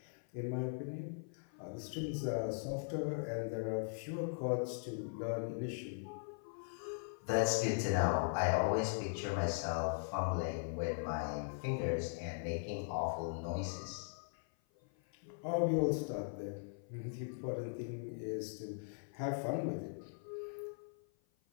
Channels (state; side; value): silent; right; 51 dB below the other